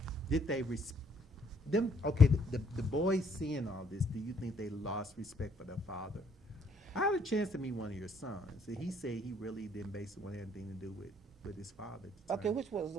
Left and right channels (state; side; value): normal; both; correlation 0.66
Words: did they them? Okay, the boys seeing all this, do you think they lost respect for their father? I had a chance to meet one of your sons, and he said he really didn't basically want anything to do with his father at the okay, time. which